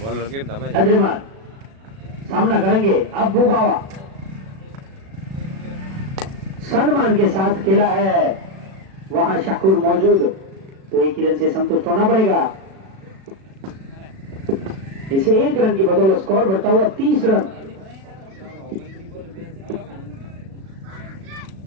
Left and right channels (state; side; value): late; left; 36 ms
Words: अद्रिमान सामना करेंगे अब्बू बाबा। सम्मान के साथ खेला है वहां शकूर मौजूद तो 1 रन से संतुष्ट होना पड़ेगा। इसे 1 रन की बदौलत स्कोर बढ़ता हुआ 30 रन।